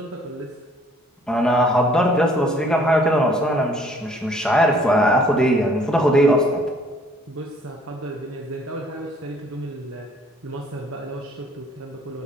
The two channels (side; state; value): both; normal; correlation 0.59